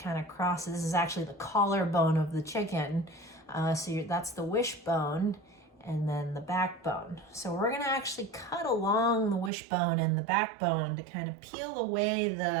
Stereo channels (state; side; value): drops out; left; at 9.5 s